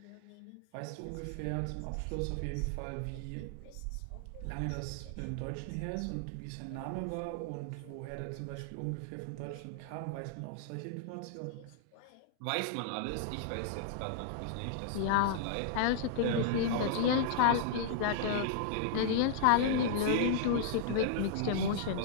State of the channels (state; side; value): different; both; correlation -0.01